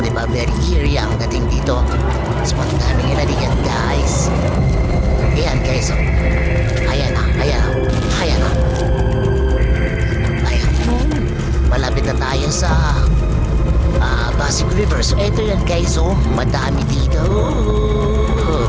diba very eerie ang dating dito? Spot namin nila diyan guys. Ayan guys. O. Ayan na. Ayan na. Ayan na. Ayan. Malapit na tayo sa Pasig River. So ito yan guys. O. Madami dito.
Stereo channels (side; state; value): both; identical; correlation 1.00